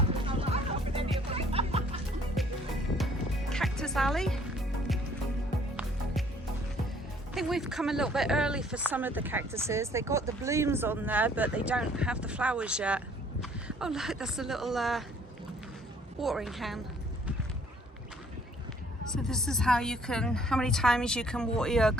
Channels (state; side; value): normal; both; correlation 0.59